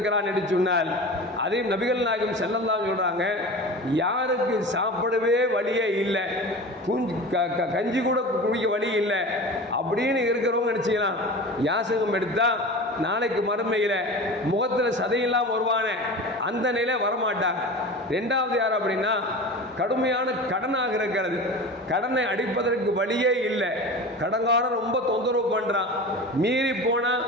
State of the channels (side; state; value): both; normal; correlation 0.33